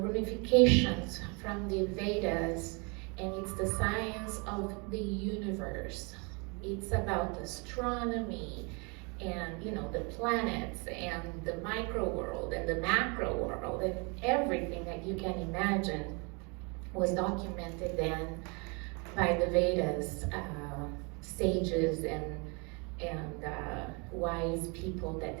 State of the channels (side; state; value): left; quieter; 32.0 dB